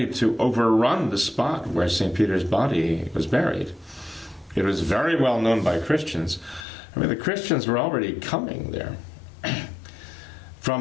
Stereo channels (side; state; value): right; drops out; at 6.7 s